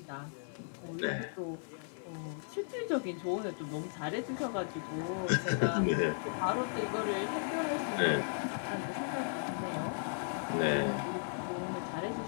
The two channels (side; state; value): right; silent; 54 dB below the other